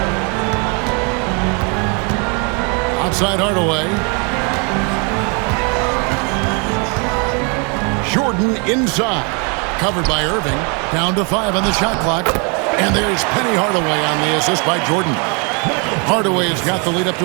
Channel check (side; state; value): left; quieter; 34.5 dB